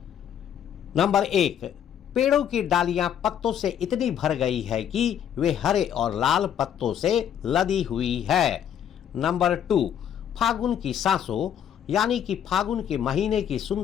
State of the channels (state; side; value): quieter; right; 9.4 dB